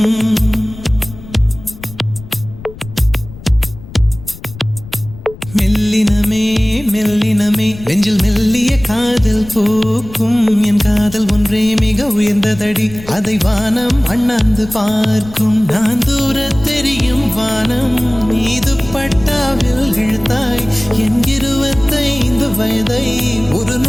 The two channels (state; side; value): noise; left; rumble, 16 dB below the sound